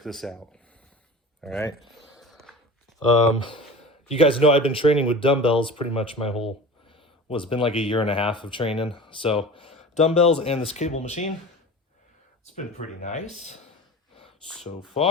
this out. All right. You guys know I've been training with dumbbells pretty much it's been like a year and a half of training. So dumbbells and this cable machine, it's been pretty nice so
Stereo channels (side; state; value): both; normal; correlation 0.35